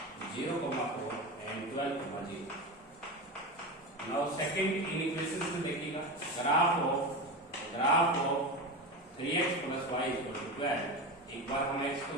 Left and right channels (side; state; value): both; normal; correlation 0.22